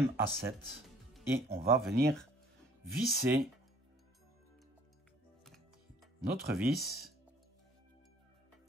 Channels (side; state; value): both; normal; correlation 0.56